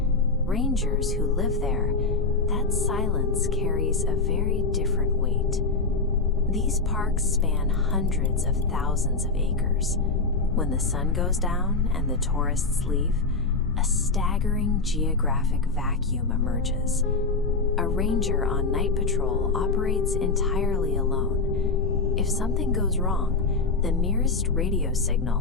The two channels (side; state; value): right; quieter; 4.0 dB